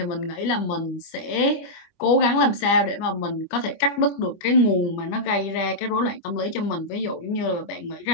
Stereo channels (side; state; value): right; late; 25 ms